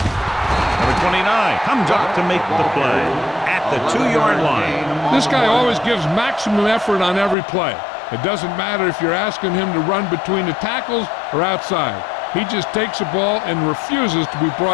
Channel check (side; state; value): right; drops out; at 7.4 s